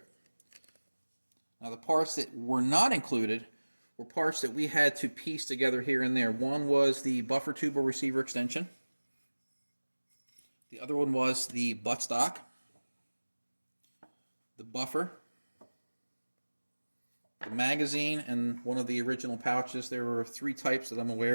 Now the parts that were not included were parts that we had to piece together here and there. One was the buffer tube or receiver extension. The other one was the buttstock, the buffer, the magazine, and one of the original pouches. There were 3 types that I'm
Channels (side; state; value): both; inverted; correlation -1.00